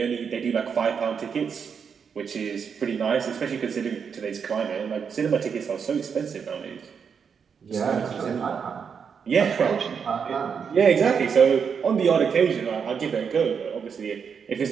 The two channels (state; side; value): quieter; left; 6.6 dB